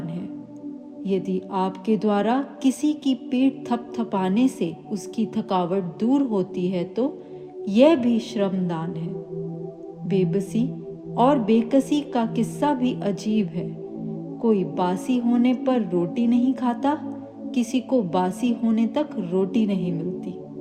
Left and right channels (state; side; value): identical; both; correlation 1.00